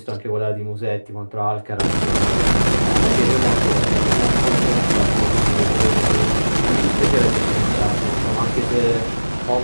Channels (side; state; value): both; inverted; correlation -1.00